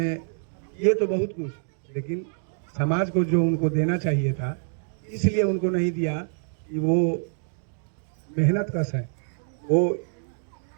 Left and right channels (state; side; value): silent; left; digital silence